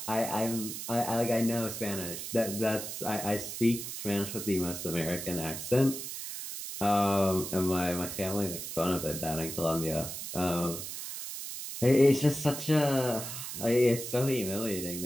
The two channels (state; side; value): noise; right; hiss, 7 dB below the sound